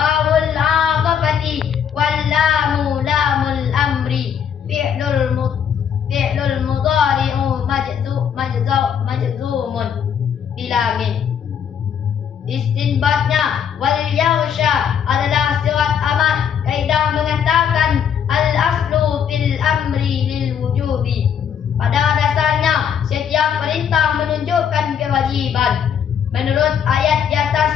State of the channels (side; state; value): right; quieter; 8.1 dB